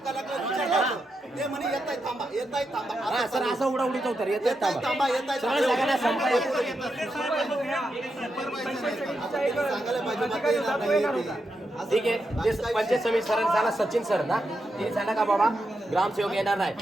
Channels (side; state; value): both; normal; correlation 0.85